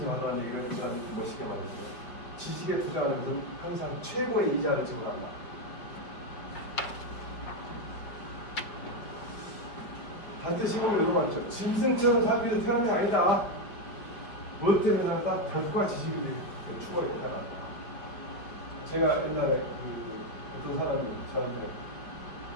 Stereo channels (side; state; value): right; late; 5.1 ms